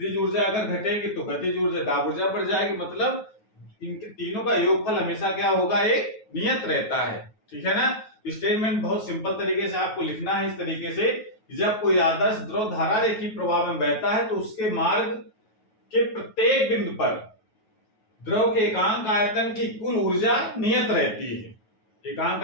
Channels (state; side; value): late; right; 9.3 ms